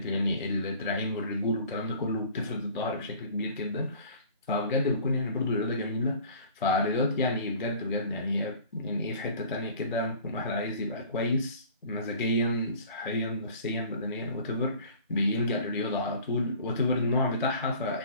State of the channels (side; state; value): both; inverted; correlation -0.46